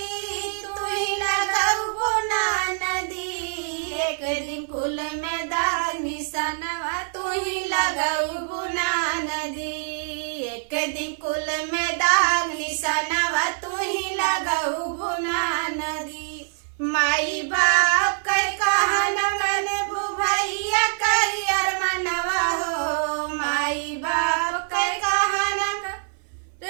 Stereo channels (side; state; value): left; silent; 59 dB below the other